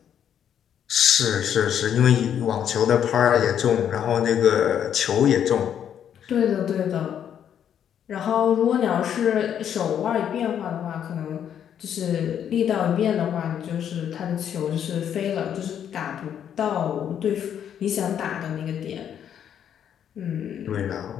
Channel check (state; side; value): quieter; right; 9.2 dB